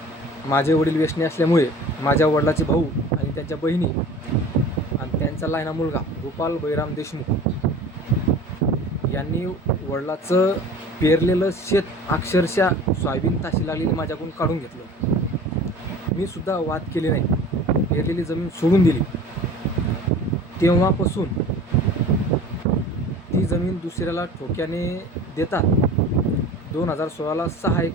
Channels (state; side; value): normal; both; correlation 0.42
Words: माझे वडील व्यसनी असल्यामुळे माझ्या वडिलाचे भाऊ आणि त्यांच्या बहिणी आणि त्यांचा लहाना मुलगा गोपाल बळीराम देशमुख यांनी वडिलाचं पेरलेलं शेत अक्षरशः सोयाबीन ताशी लागलेली माझ्याकडून काढून घेतलं. मी सुद्धा वाद केले नाही, पेरलेली जमीन सोडून दिली. तेव्हापासून ती जमीन दुसऱ्याला ठोक्याने देतात. 2016ला 6